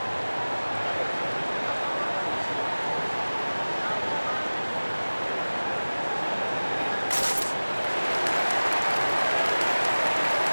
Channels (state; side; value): inverted; both; correlation -1.00